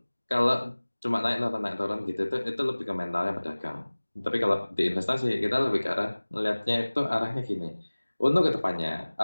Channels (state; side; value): inverted; both; correlation -1.00